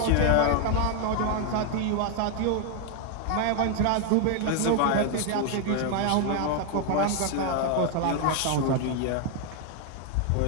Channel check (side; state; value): both; different; correlation 0.00